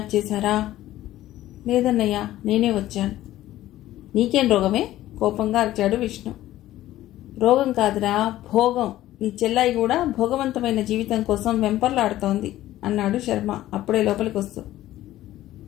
చేశారా? లేదన్నయ్య, నేనే వచ్చాను. నీకేం రోగమే? కోపంగా అరిచాడు విష్ణు. రోగం కాదురా, భోగం. నీ చెల్లాయి కూడా భోగవంతమైన జీవితం కోసం వెంపర్లాడుతోంది అన్నాడు శర్మ అప్పుడే లోపలికి వస్తూ.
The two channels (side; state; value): right; quieter; 14.6 dB